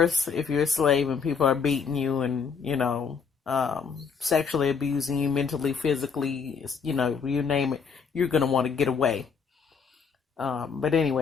if you're a slave and people are beating you and, sexually abusing you, mentally, physically, you name it, you're going to want to get away. But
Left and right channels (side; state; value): right; quieter; 6.0 dB